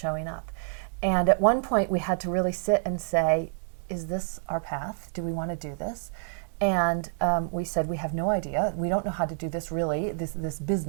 up. And at one point we had to really sit and say, is this our path? Do we want to do this? And we said, we have no idea. We don't know how to do this really, this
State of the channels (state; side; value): silent; left; digital silence